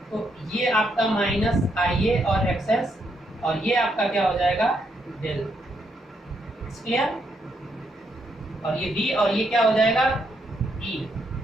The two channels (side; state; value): both; normal; correlation 0.77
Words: तो ये आपका माइनस आई ए और एक्सेस, और ये आपका क्या हो जाएगा डेल, क्लियर। और ये बी और ये क्या हो जाएगा ई,